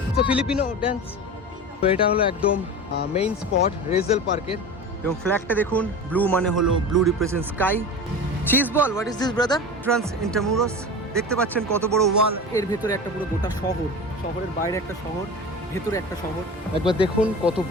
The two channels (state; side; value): normal; both; correlation 0.31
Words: তো ফিলিপিনো ড্যান্স। তো এটা হলো একদম মেইন স্পট রেজেল পার্কের, এবং ফ্ল্যাগটা দেখুন, ব্লু মানে হলো blue represent sky. Cheese ball, what is this brother? Trans Intramuros. দেখতে পাচ্ছেন কত বড় ওয়াল, এর ভেতরে একটা পুরো গোটা শহর, শহরের বাইরে একটা শহর, ভেতরে একটা শহর। একবার দেখুন কত